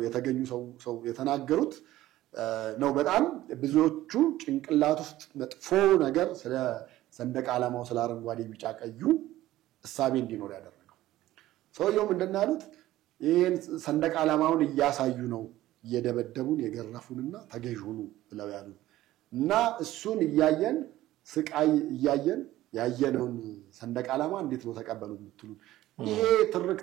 የተገኙ ሰው የተናገሩት ነው። በጣም ብዙዎቹ ጭንቅላት ውስጥ መጥፎ ነገር ስለ ሰንደቅ ዓላማው ስለ አረንጓዴ ቢጫ ቀዩ እሳቤ እንዲኖር ያደረገው ሰውየው ምንድነው ያሉት? ይሄን ሰንደቅ ዓላማውን እያሳዩ ነው እየደበደቡን የገረፉንና ተገዥሁኑ ብለው ያሉን እና እሱን እያየን ስቃይ እያየን ያየነውን ሰንደቅ ዓላማ እንዴት ነው ተቀበሉ የምትሉን? ይሄ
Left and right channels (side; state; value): left; quieter; 15.2 dB